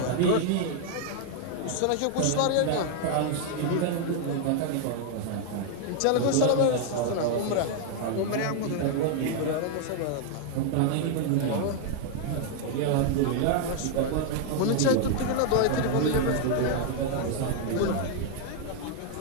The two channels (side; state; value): both; different; correlation 0.00